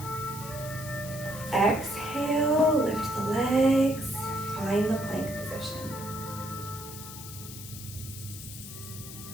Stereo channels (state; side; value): noise; left; hiss, 12 dB below the sound